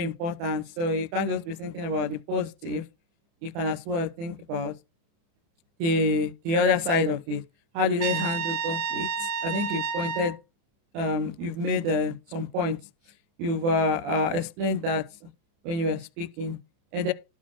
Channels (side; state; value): left; late; 30 ms